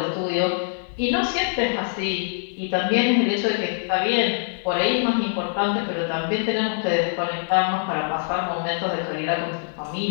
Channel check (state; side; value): silent; right; 63 dB below the other